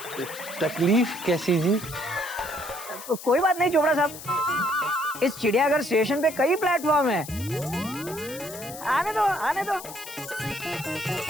तकलीफ कैसी जी? तो कोई बात नहीं चोपड़ा साहब, इस चिड़ियाघर स्टेशन पे कई प्लेटफॉर्म है, आने दो आने दो।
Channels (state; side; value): noise; left; hiss, 13 dB below the sound